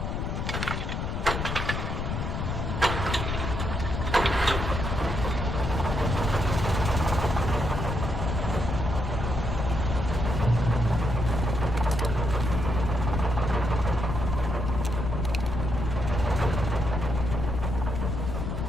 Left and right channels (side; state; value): left; noise; rumble, 2 dB below the sound